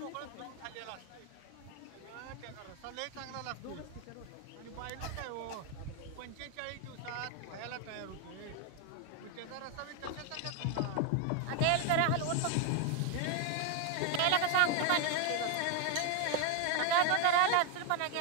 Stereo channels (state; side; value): different; both; correlation 0.01